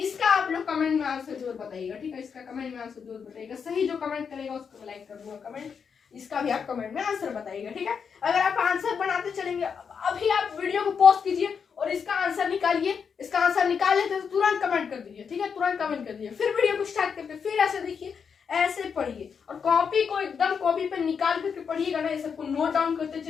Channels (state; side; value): quieter; right; 6.5 dB